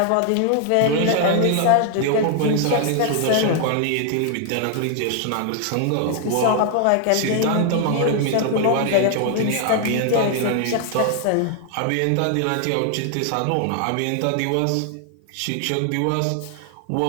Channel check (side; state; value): both; different; correlation 0.00